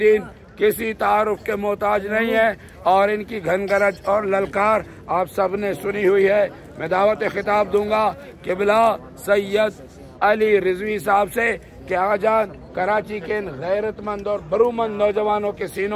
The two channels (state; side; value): identical; both; correlation 1.00